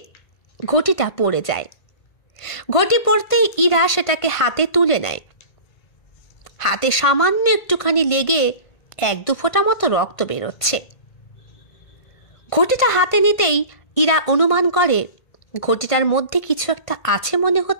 ঘটিটা পড়ে যায়। ঘটি পড়তেই ইরা সেটাকে হাতে তুলে নেয়। হাতে সামান্য একটুখানি লেগে 1-2 ফোঁটা মতো রক্ত বেরোচ্ছে। ঘটিটা হাতে নিতেই ইরা অনুমান করে ঘটিটার মধ্যে কিছু একটা আছে মনে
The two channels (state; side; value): late; right; 1.5 ms